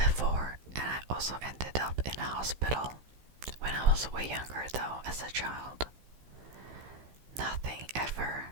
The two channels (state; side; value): late; left; 15 ms